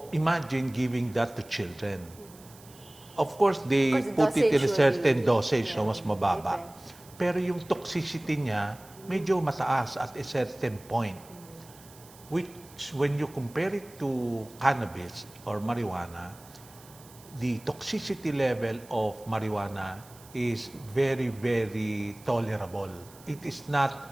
imagine giving that to children. Of course, they put it in a certain dosage, so mas mababa. Pero yung toxicity niya, medyo mataas at a certain point. Which, when you compare it to cannabis or marijuana, the toxicity level of marijuana is very, very tolerable. It is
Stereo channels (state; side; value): noise; right; hiss, 23 dB below the sound